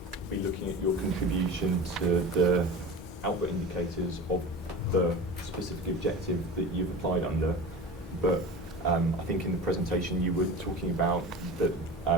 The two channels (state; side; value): normal; both; correlation 0.32